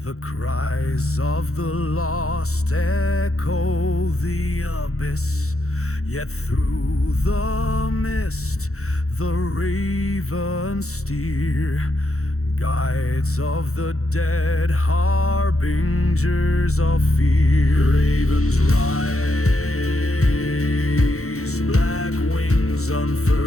The cries of the lost echo the abyss. Yet through the mist the ravens steer, guides of the dead, harbingers of fear. Ravens rise, black wings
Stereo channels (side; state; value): right; late; 0.64 ms